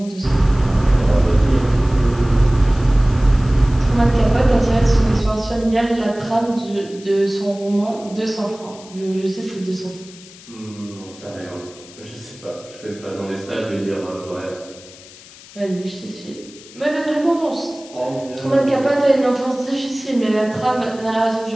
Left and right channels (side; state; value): left; noise; hiss, 20 dB below the sound